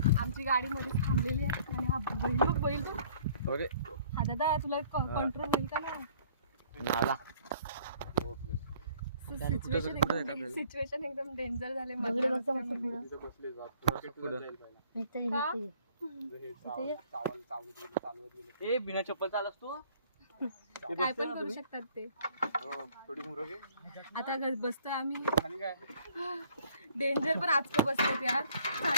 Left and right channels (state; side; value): inverted; both; correlation -0.57